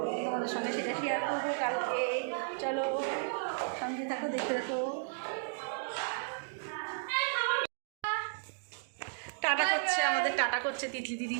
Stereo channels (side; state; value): left; silent; digital silence